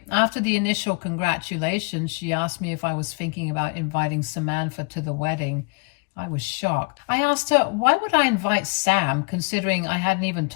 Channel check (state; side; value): quieter; right; 32.2 dB